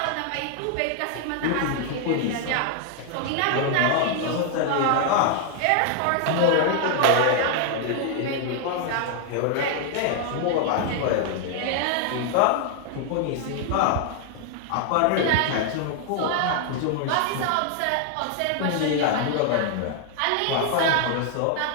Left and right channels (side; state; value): both; different; correlation 0.00